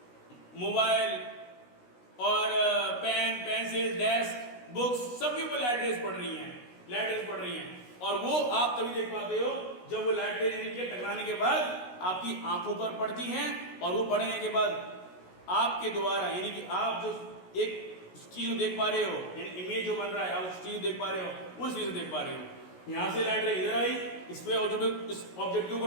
मोबाइल और पेन, पेंसिल, डेस्क, बुक्स सबके ऊपर लाइट रेस पड़ रही हैं, लाइट रेस पड़ रही हैं, और वो आप तभी देख पाते हो जब वो लाइट रेस यानी कि टकराने के बाद आपकी आंखों पर पड़ती हैं, और वो पड़ने के बाद आपके द्वारा यानी कि आप जो एक चीज को देख पा रहे हो, यानी इमेज जो बन रहा है आप उस चीज को देख पा रहे हो, उस चीज को देख पा रहे हो। यहां से लाइट रे इधर आई, इस पे ऑब्जेक्ट, इस ऑब्जेक्ट के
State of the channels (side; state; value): right; late; 16 ms